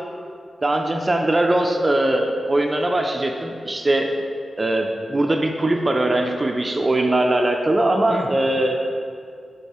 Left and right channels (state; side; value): normal; both; correlation 0.94